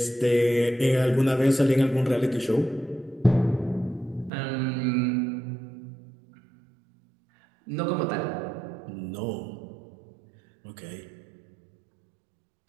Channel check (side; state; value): left; drops out; at 4.3 s